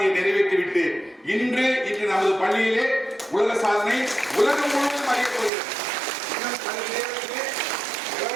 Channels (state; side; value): drops out; left; at 5.5 s